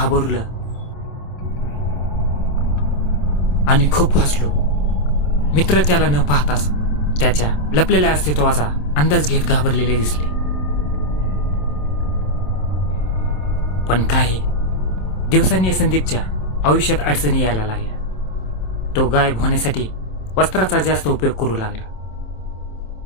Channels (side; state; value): right; late; 27 ms